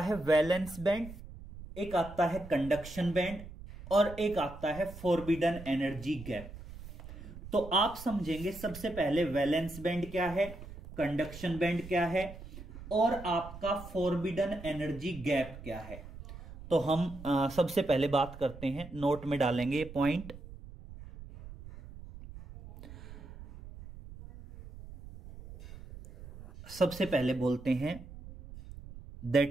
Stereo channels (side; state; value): right; noise; rumble, 14 dB below the sound